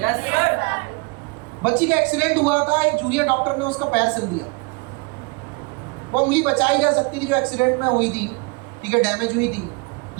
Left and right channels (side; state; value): left; quieter; 29.2 dB